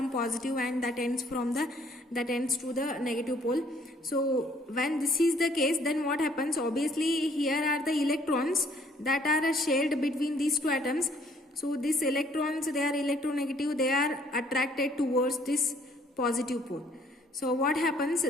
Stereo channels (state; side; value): normal; both; correlation 0.62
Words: positive and that ends to the negative pole. So when this is the case, then what happens? Obviously here are the electrons that are shared between these two atoms. So these electrons, they are electronegative, they are attracted towards this positive pole. So what happens?